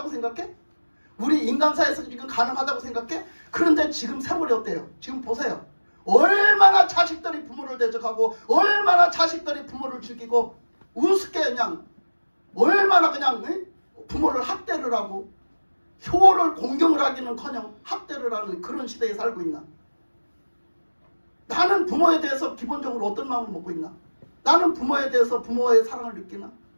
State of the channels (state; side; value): inverted; both; correlation -1.00